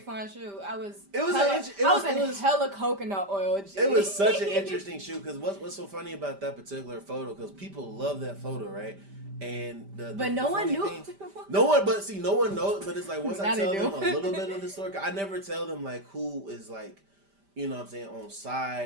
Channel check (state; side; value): late; left; 5.1 ms